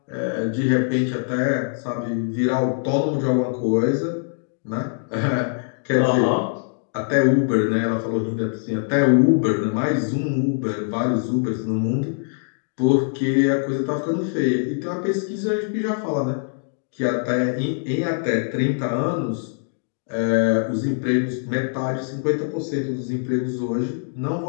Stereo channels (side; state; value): right; silent; digital silence